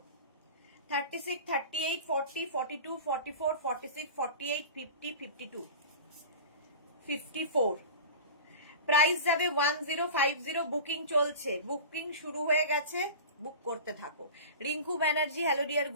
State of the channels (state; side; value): inverted; both; correlation -0.34